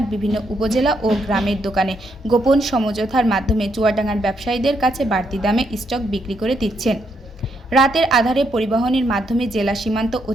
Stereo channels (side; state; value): both; normal; correlation 0.77